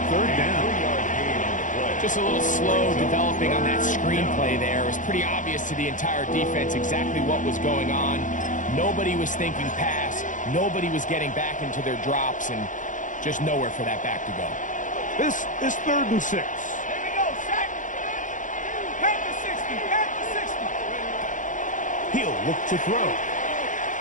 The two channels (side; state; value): right; late; 0.37 ms